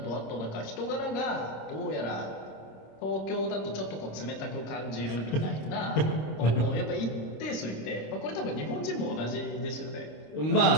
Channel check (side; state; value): right; late; 26 ms